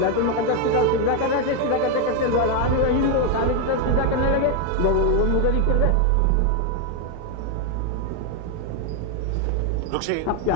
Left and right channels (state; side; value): different; both; correlation 0.01